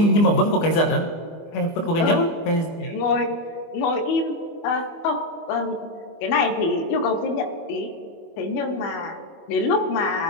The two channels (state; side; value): late; right; 24 ms